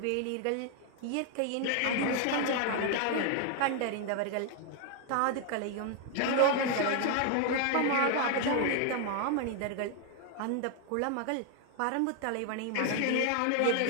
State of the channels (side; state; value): both; different; correlation 0.00